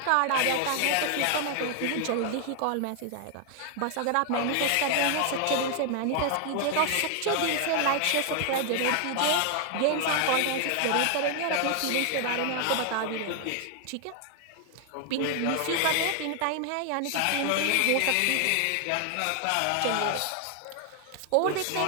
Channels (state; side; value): different; both; correlation 0.00